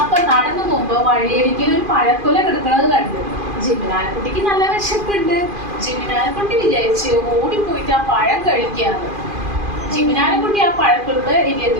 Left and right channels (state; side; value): late; left; 2.5 ms